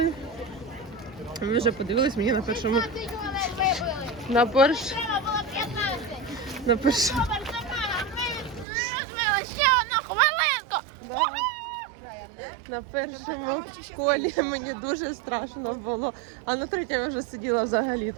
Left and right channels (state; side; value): drops out; left; at 8.7 s